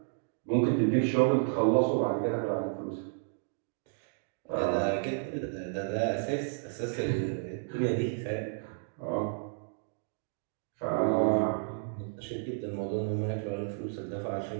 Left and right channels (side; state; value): left; silent; digital silence